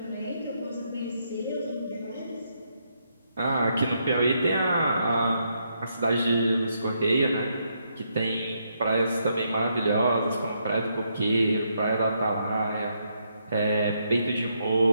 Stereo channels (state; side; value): inverted; both; correlation -0.77